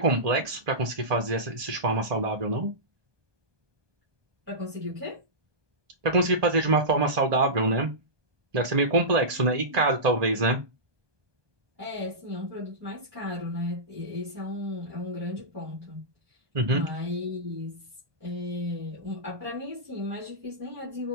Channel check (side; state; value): left; late; 1.2 ms